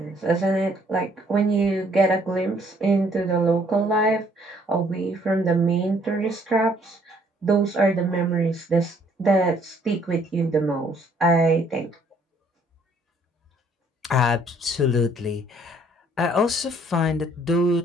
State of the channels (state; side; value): normal; both; correlation 0.63